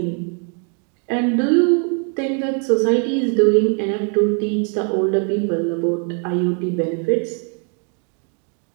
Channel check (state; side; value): quieter; left; 39.5 dB